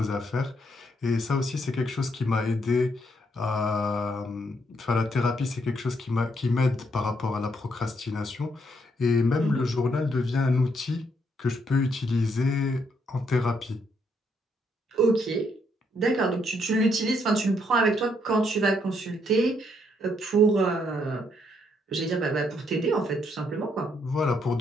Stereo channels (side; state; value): both; normal; correlation 0.73